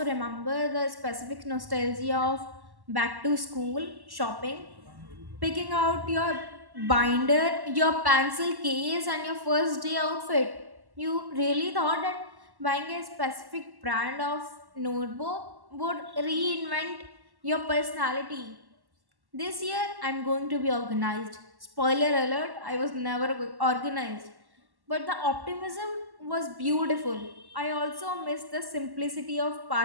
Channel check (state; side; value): late; left; 1.1 ms